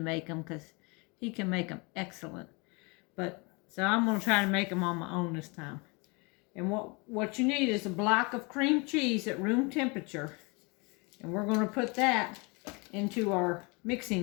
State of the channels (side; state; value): right; quieter; 29.4 dB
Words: make them because he can make them excellent. But so I'm going to try to make them on my own this time. And what you need is a block of cream cheese at room temperature. And we're going to put that into our